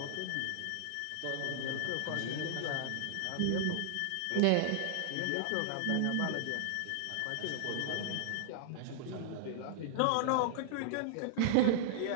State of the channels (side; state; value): both; different; correlation -0.01